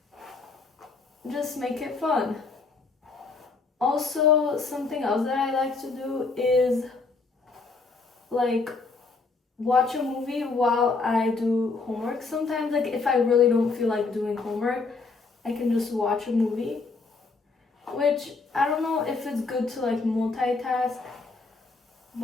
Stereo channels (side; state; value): right; quieter; 4.1 dB